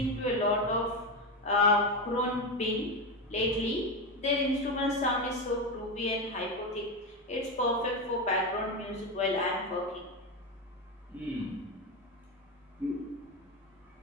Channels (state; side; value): normal; both; correlation 0.14